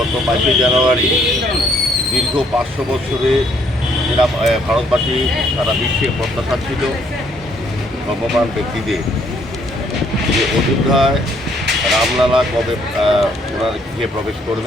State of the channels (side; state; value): both; normal; correlation 0.66